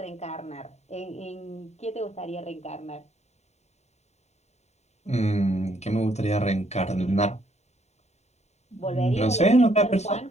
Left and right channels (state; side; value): late; right; 0.32 ms